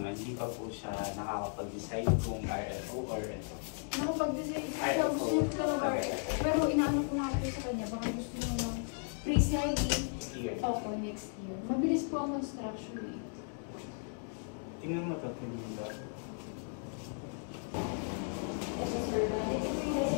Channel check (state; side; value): silent; right; 54 dB below the other